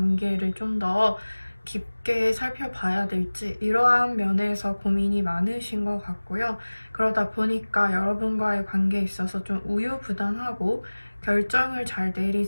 좀 더 깊게 살펴봐야 될지 이러한 면에서 고민이 많으신 것 같고요. 그러다 보니까 여러분과의 관계에 있어서 좀 우유부단하고 결정을 잘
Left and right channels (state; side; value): inverted; both; correlation -1.00